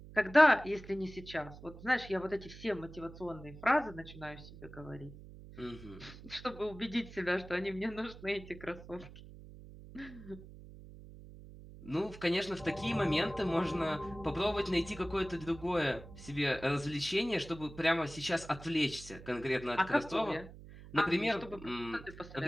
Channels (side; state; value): right; noise; hum, 16 dB below the sound